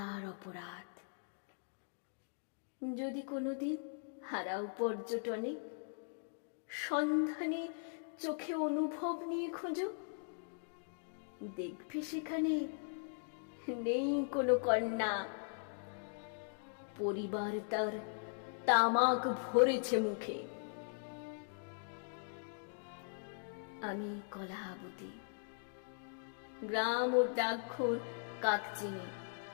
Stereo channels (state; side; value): silent; right; digital silence